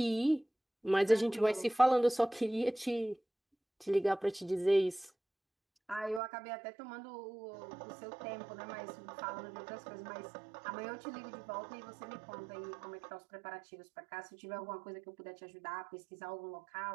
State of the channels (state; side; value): drops out; left; at 6.2 s